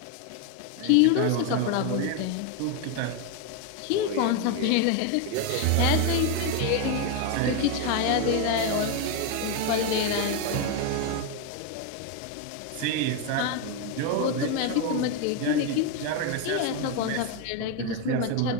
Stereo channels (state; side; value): different; both; correlation 0.01